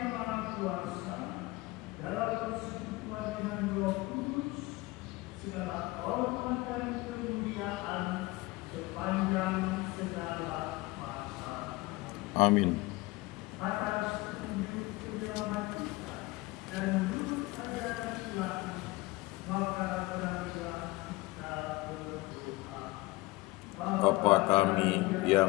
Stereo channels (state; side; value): quieter; right; 21.0 dB